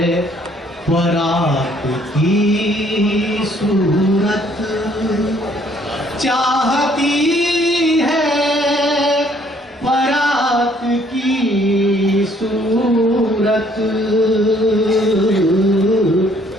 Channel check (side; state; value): both; normal; correlation 0.63